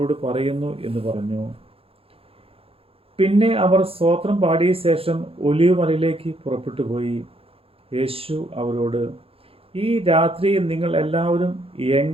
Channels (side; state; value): left; late; 0.27 ms